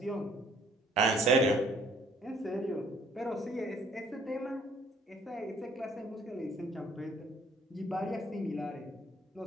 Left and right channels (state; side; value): normal; both; correlation 0.60